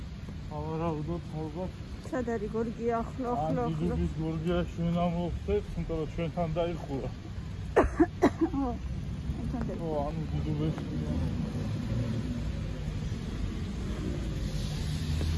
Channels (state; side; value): identical; both; correlation 1.00